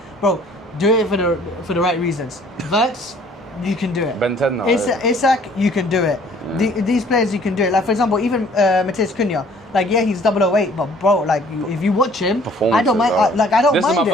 Bro, do it for the right reasons. Verts, you can do it. Ben 10 now. Isak, you can do it. These players, you can do it. Like, for example, even Matheus Cunha. Like, yeah, he's 008, but bro, like, if you watch him, I don't mind. I don't mind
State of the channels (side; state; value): both; normal; correlation 0.56